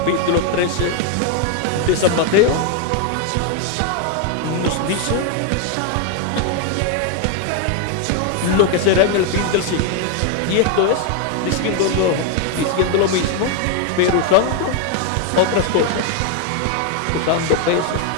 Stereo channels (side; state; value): both; different; correlation 0.01